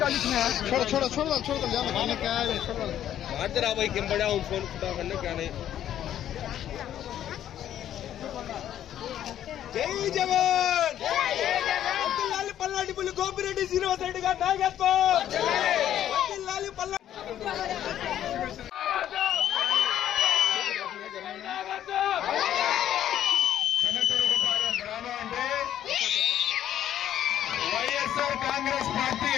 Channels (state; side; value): quieter; right; 11.1 dB